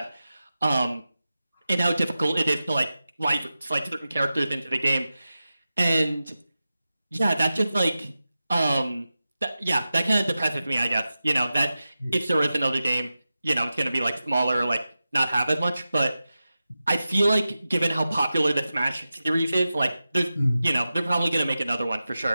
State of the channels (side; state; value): both; inverted; correlation -0.94